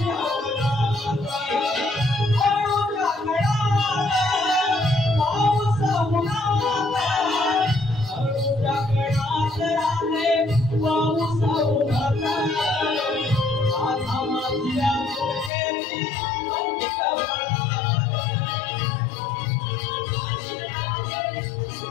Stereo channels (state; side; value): drops out; right; at 15.5 s